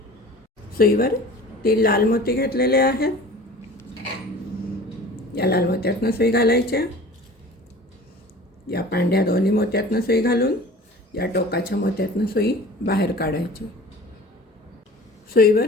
सुईवर 3 लाल मोती घेतलेले आहेत. या लाल मोत्यातनं सुई घालायची, या पांढऱ्या दोन्ही मोत्यातनं सुई घालून या टोकाच्या मोत्यातनं सुई बाहेर काढायची. सुईवर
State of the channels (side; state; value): both; normal; correlation 0.42